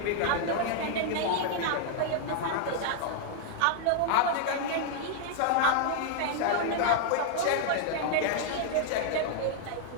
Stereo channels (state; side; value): different; both; correlation -0.01